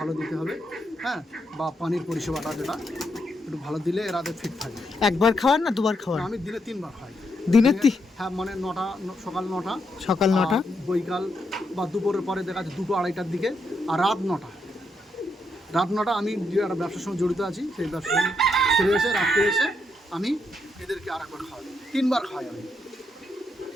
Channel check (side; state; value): both; normal; correlation 0.79